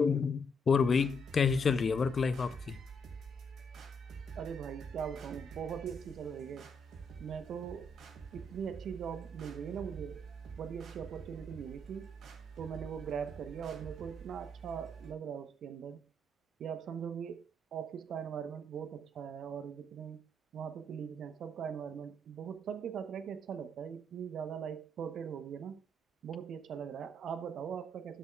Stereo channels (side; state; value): both; normal; correlation 0.74